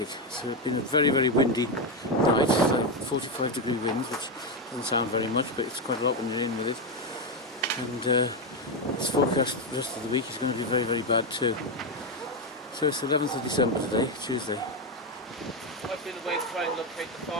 So it's been a very, very windy night. It's like 45-degree winds, which doesn't sound very much, but it's quite a lot when you're in with it. And it's forecast the rest of the week is going to be very, very bad too. So it's the 11th of December today, Tuesday. I've been away to try and locate the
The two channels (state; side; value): normal; both; correlation 0.08